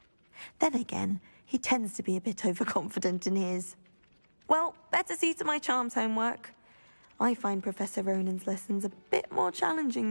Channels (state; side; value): inverted; both; correlation -1.00